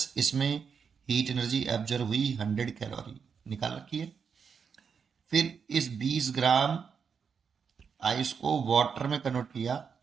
इसमें हीट एनर्जी एब्जॉर्व हुई 100 कैलोरी, निकाल रखी है। फिर इस 20 ग्राम आइस को वाटर में कन्वर्ट किया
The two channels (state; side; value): quieter; left; 6.3 dB